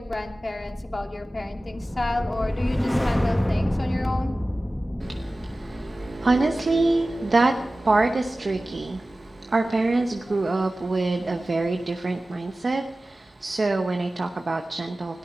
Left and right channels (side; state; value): both; normal; correlation 0.96